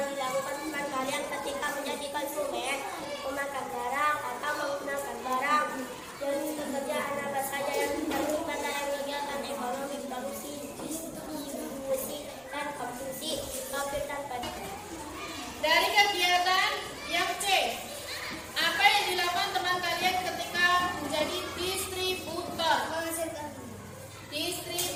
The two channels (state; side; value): identical; both; correlation 1.00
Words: dilakukan teman kalian ketika menjadi konsumen, memakan barang atau menggunakan barang. Jadi pekerjaan apa saja yang terlibat dalam kegiatan ekonomi, produksi, distribusi, dan konsumsi. Topik tanpa Dari kegiatan yang C, apa yang dilakukan teman kalian ketika menjadi distributor? menghasilkan,